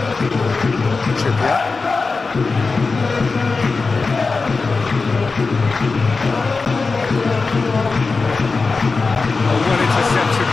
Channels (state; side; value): quieter; right; 4.2 dB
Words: Trippier. Oh, well intercepted,